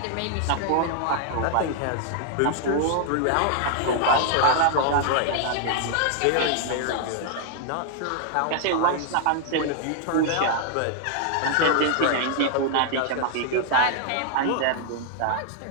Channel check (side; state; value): both; different; correlation -0.01